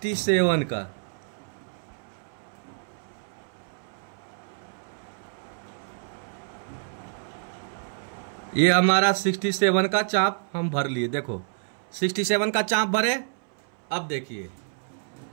का, ये हमारा 67 का चाप हम भर लिए, देखो 67 का चाप भरे। अब देखिए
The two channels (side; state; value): left; silent; 60 dB below the other